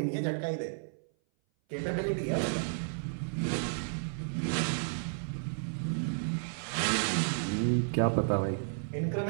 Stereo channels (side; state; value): left; silent; 56 dB below the other